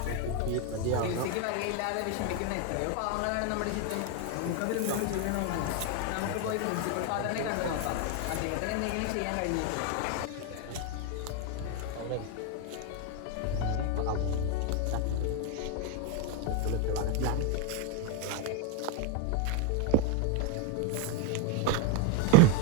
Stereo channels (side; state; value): both; different; correlation 0.02